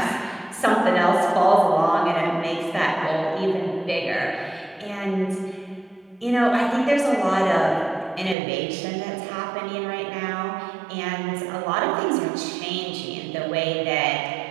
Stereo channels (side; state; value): left; drops out; at 8.3 s